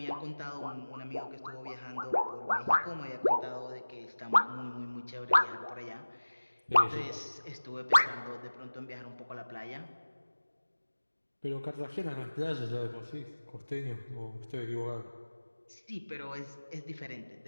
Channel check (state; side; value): inverted; both; correlation -1.00